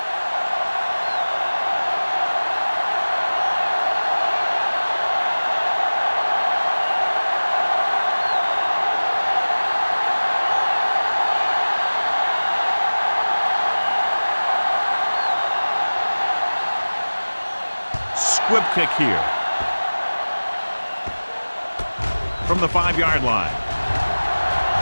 Squib kick here. From the 5-yard line.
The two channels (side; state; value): both; inverted; correlation -1.00